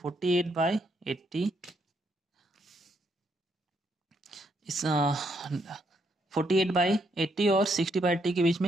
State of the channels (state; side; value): normal; both; correlation 0.75